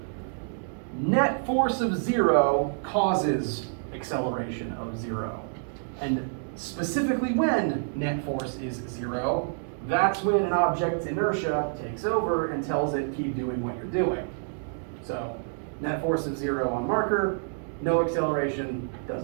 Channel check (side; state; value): left; silent; digital silence